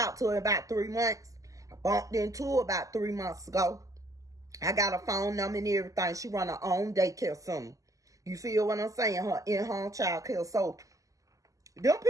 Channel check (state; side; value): late; left; 0.16 ms